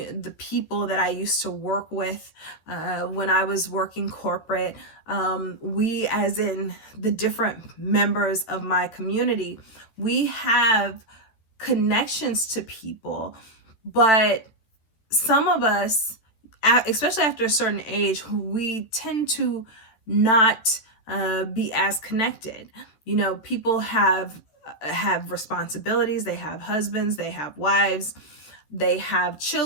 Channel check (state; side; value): late; right; 14 ms